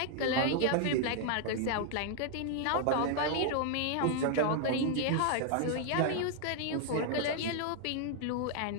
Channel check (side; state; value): both; different; correlation 0.00